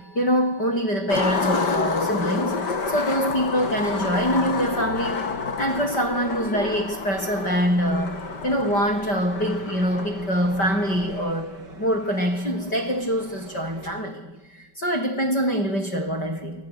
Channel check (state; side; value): late; right; 5.2 ms